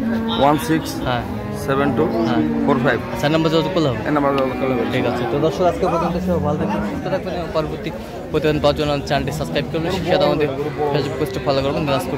16 হ্যাঁ 72 হ্যাঁ। 45। আচ্ছা, নাম্বার যোগাযোগ করলে হবে। এই নাম্বার কল হবে। ঠিক আছে। তো দর্শক, আজকে পর্যন্ত সব ভালো থাকবেন, সুস্থ থাকবেন এবং পরবর্তী প্রতিদিন পাওয়ার জন্য চ্যানেলটি সাবস্ক্রাইব করবেন, সাথে আমাদের ফেসবুক পেজটি ফলো করবেন, দিনাজপুর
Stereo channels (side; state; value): both; identical; correlation 1.00